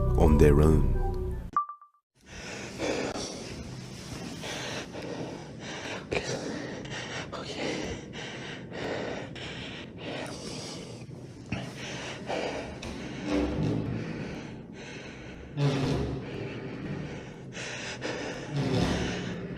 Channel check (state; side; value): identical; both; correlation 1.00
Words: on their own.